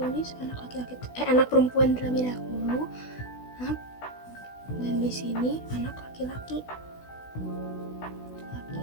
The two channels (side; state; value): right; late; 16 ms